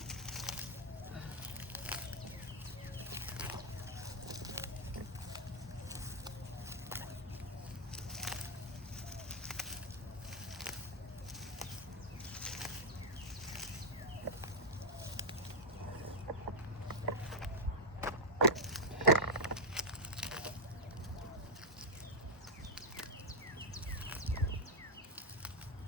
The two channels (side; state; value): both; normal; correlation 0.00